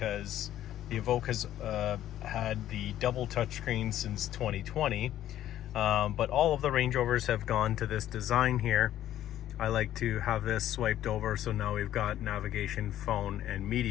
the Evoque has had the double touchscreen since 2020, but all of the Range Rovers have gone to this design here. I like to have this swiped over, so now we've got navigation, phone, and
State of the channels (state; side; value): quieter; right; 12.4 dB